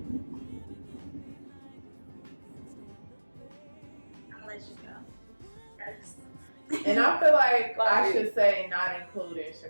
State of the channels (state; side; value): inverted; both; correlation -1.00